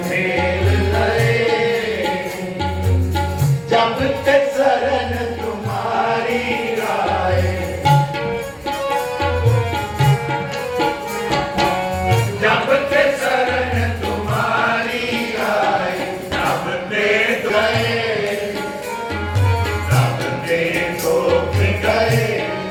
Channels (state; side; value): identical; both; correlation 1.00